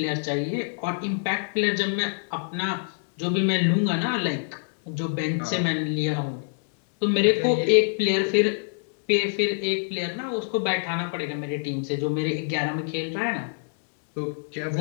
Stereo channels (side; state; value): right; silent; digital silence